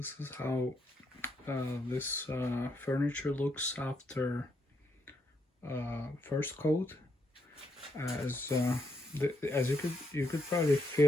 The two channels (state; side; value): normal; both; correlation 0.77